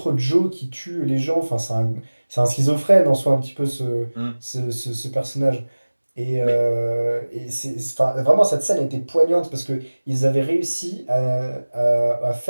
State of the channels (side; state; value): both; inverted; correlation -1.00